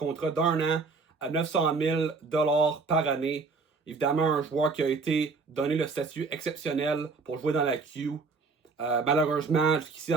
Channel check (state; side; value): quieter; left; 4.4 dB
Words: d'un an à 900 000 par année. Évidemment, un joueur qui a été donné le statut exceptionnel pour jouer dans la Q. Malheureusement, jusqu'ici